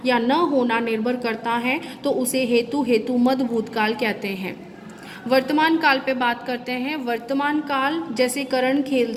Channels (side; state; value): both; identical; correlation 1.00